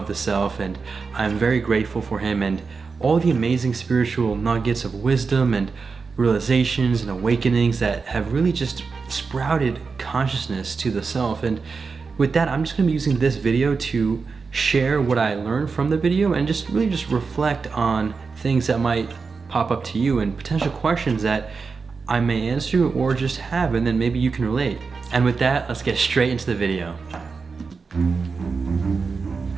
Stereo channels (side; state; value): left; quieter; 4.8 dB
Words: the self, and I'm very grateful for him and all the amazing spiritual nuggets of wisdom and realizations and awakenings that have really just sprouted consciousness to the self. And with that, I'm just going to be using this video to share what I learned from the video and just really reflect on things that might pop up to you and potential questions that I may answer or just have, and then maybe you can relate. And with that, let's get straight into the video.